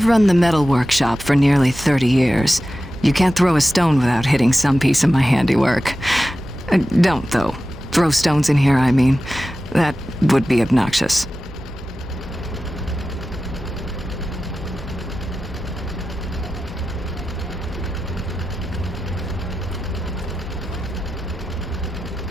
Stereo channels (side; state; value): both; normal; correlation 0.93